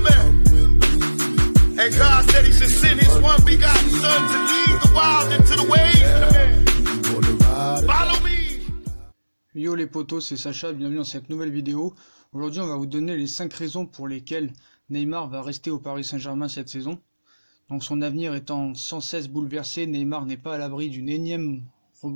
And God said He should send His one begotten Son to lead the wild into the ways. Follow me. Yo les potos, c'est Sacha, bienvenue dans cette nouvelle vidéo. Aujourd'hui on va vous donner les 5 raisons pour lesquelles Neymar va rester au Paris Saint-Germain cette saison. Donc son avenir étant sans cesse bouleversé, Neymar n'est pas à l'abri d'une énième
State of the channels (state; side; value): inverted; both; correlation -1.00